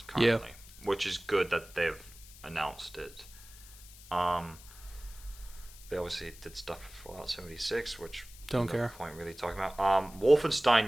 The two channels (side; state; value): left; noise; hiss, 19 dB below the sound